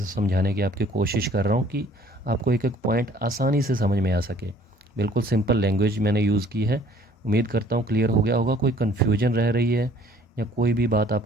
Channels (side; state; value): both; normal; correlation 0.56